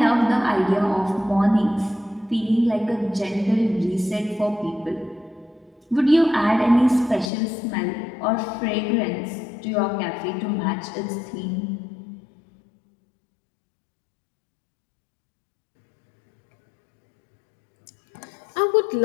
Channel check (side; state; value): right; drops out; at 7.3 s